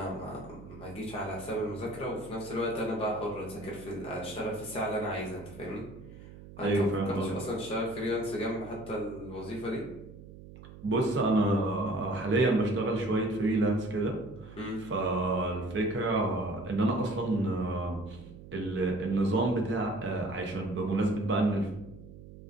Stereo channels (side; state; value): right; noise; hum, 16 dB below the sound